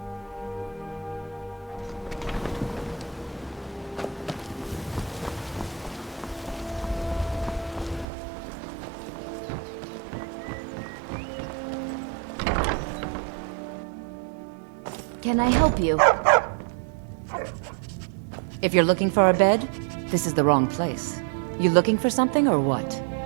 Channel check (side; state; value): left; drops out; at 8.1 s